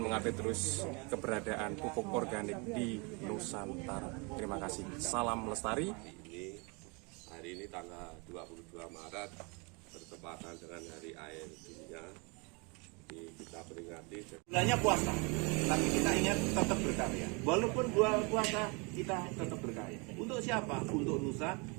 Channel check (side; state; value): left; quieter; 30.9 dB